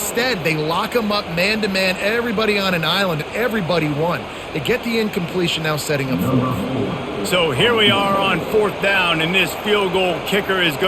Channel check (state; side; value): identical; both; correlation 1.00